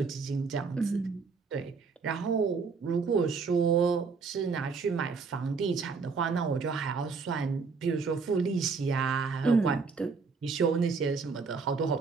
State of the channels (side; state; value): left; quieter; 4.9 dB